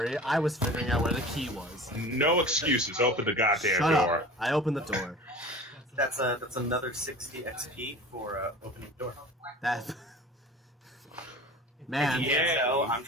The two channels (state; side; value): normal; both; correlation 0.38